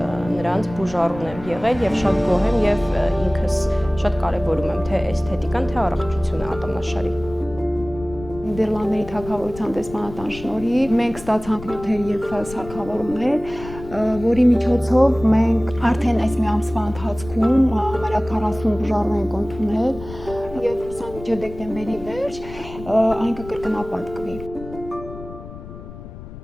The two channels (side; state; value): left; noise; rumble, 14 dB below the sound